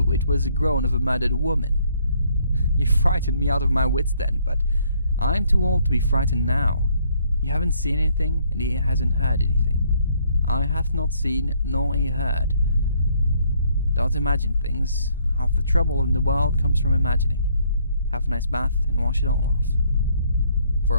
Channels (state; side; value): inverted; both; correlation -0.67